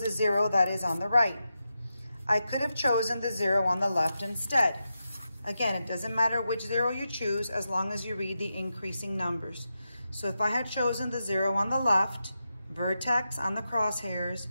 zero that is on the right. I could have chosen the zero on the left instead. Again, it doesn't matter which zero you choose as long as you read the increasing numbers. So if I had chosen the zero on the left, vertex on the crosshairs,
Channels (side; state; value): both; inverted; correlation -0.89